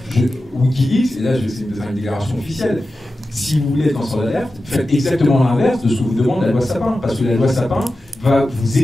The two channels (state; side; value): normal; both; correlation 0.93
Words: Wikileaks, et là c'est une déclaration officielle, si vous voulez être lanceur d'alerte, faites exactement l'inverse de ce que vous demande la loi Sapin, parce que la loi Sapin va vous